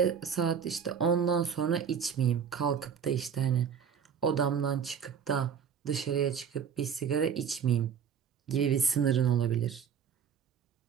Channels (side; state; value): left; quieter; 7.3 dB